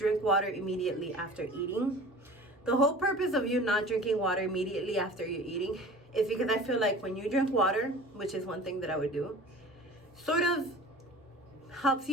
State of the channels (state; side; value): normal; both; correlation 0.41